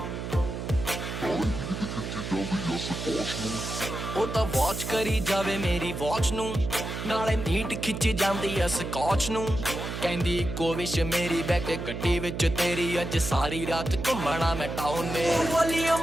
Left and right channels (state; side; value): noise; right; hum, 6 dB below the sound